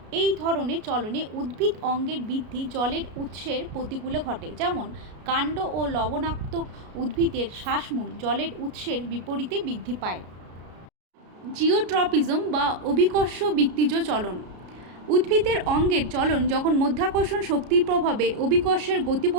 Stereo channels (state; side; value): late; left; 33 ms